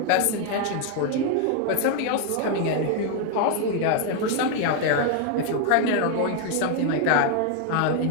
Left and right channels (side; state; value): both; different; correlation 0.00